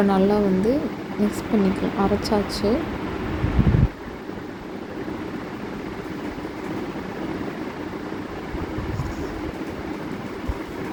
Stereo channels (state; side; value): identical; both; correlation 1.00